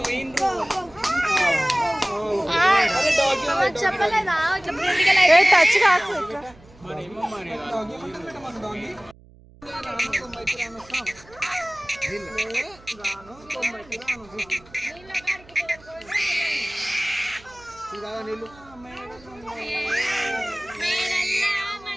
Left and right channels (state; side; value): noise; right; hum, 24 dB below the sound